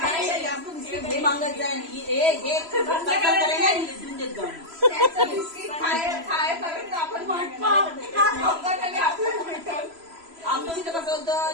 मागत जाईल बिस्किट खायपर्यंत आपण आमच्या इथं कसं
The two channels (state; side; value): late; left; 3.0 ms